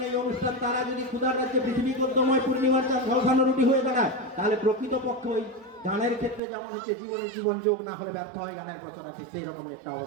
এই অনুষ্ঠান, তারা যদি ক্ষুধার রাজ্যে পৃথিবী গদ্যময় পূর্ণিমার চাঁদ ঝলসানো রুটি হয়ে দাঁড়ায়, তাহলে প্রকৃতপক্ষে ওই গানের ক্ষেত্রে যেমন হচ্ছে জীবনের জীবন যোগ না হলে ব্যর্থ হয় গানের কথাটা, ঠিক সেই রকম একটা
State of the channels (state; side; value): drops out; left; at 6.4 s